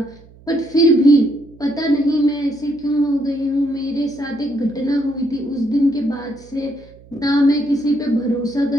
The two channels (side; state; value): right; noise; hum, 24 dB below the sound